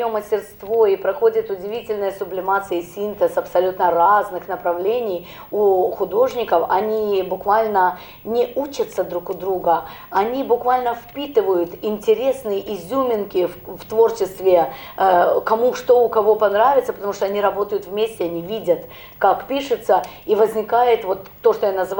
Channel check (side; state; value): both; identical; correlation 1.00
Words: мастерство и проходит удивительная сублимация и синтез абсолютно разных направлений у художников. Они буквально не учатся друг у друга, они буквально впитывают интересные изюминки в творчестве, кому что у кого понравится, потому что они работают вместе, они видят, как пишется, и возникает вот то, что я